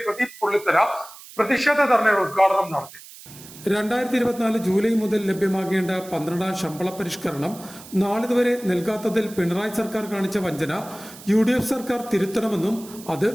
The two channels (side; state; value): right; noise; hiss, 18 dB below the sound